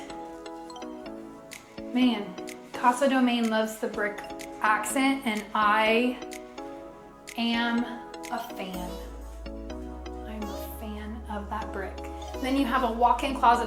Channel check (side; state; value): both; identical; correlation 1.00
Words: Man, Casa Domain loves the brick accent, and I am a fan. I'm a fan of that brick. Then you have a walk-in